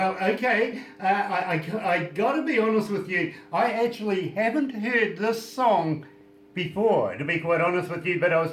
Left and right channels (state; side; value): identical; both; correlation 1.00